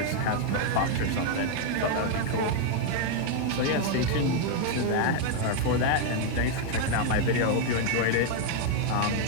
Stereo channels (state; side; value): different; both; correlation 0.00